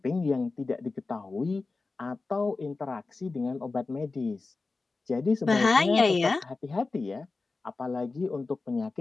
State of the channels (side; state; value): right; quieter; 3.8 dB